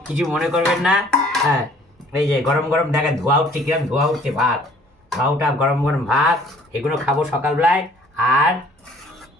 কিছু মনে করবেন না। হ্যাঁ, এই যে গরম গরম দেখেন ধোয়া উঠছে, কিরম ধোয়া উঠছে ভাত, ধোয়া গরম গরম ভাত, এগুলো খাবো সকালবেলায়। আর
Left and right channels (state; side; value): normal; both; correlation 0.55